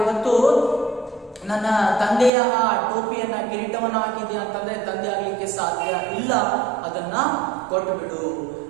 ಇವತ್ತು ನನ್ನ ತಂದೆಯ ಆ ಟೋಪಿಯನ್ನ ಕಿರೀಟವನ್ನ ಹಾಕಿದ್ಯಾ ಅಂತಂದ್ರೆ ತಂದೆ ಆಗ್ಲಿಕ್ಕೆ ಸಾಧ್ಯ ಇಲ್ಲ, ಅದನ್ನ ಕೊಟ್ಟು ಬಿಡು.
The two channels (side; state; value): left; drops out; at 2.3 s